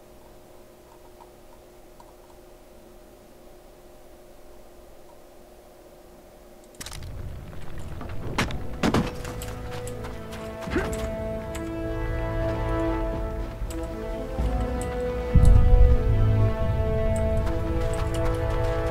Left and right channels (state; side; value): identical; both; correlation 1.00